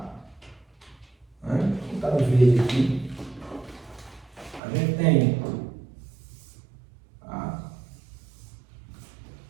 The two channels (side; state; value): left; drops out; at 4.6 s